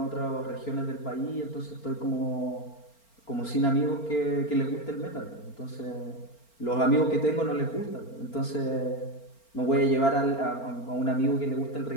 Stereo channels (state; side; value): late; right; 4.4 ms